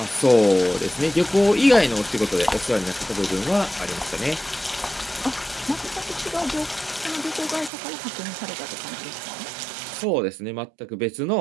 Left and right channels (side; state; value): left; drops out; at 7.7 s